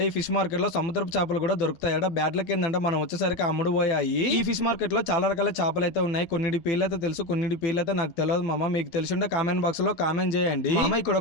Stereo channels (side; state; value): right; late; 12 ms